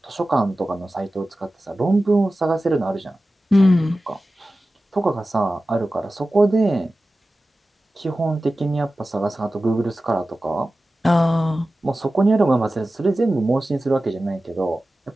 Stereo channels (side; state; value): both; normal; correlation 0.95